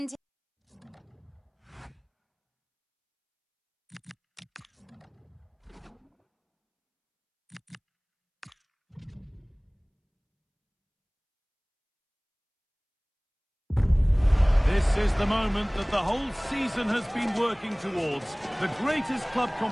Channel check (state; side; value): identical; both; correlation 1.00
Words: This is the moment that the whole season has been working towards. The greatest club